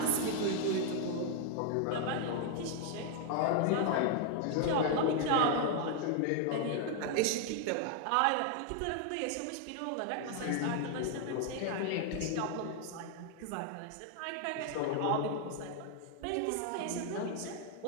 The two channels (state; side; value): different; both; correlation 0.00